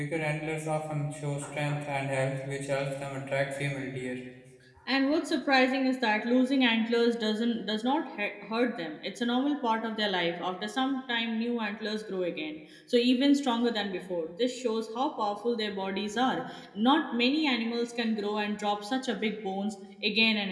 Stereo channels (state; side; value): identical; both; correlation 1.00